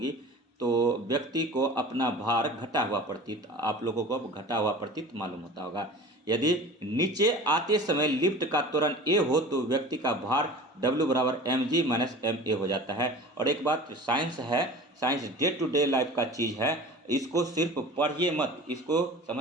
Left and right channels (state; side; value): normal; both; correlation 0.39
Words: तो व्यक्ति को अपना भार घटा हुआ प्रतीत, आप लोगों को घटा हुआ प्रतीत मालूम होता होगा। यदि नीचे आते समय लिफ्ट का त्वरण ए हो तो व्यक्ति का भार W बराबर mg माइनस ma हो जाता है। और एक बात साइंस है, science day to day life का चीज़ है, इसको सिर्फ पढ़िए मत, इसको